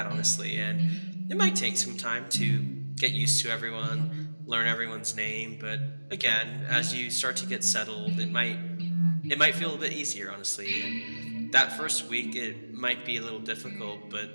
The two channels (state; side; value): inverted; both; correlation -1.00